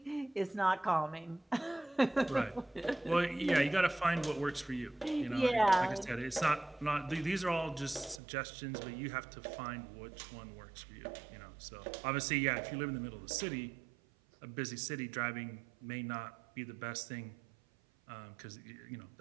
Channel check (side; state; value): left; drops out; at 8.2 s